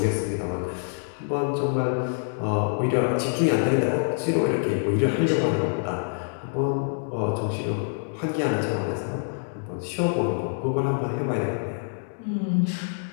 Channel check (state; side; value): silent; right; digital silence